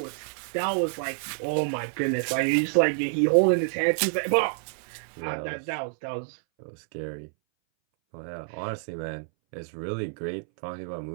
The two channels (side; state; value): left; silent; 59 dB below the other